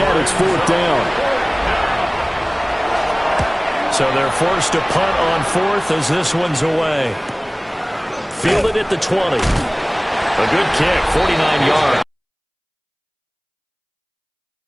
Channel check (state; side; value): identical; both; correlation 1.00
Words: it's fourth down. So they're forced to punt on fourth as this one's away. Fielded at the 20. A good kick, 49 yards.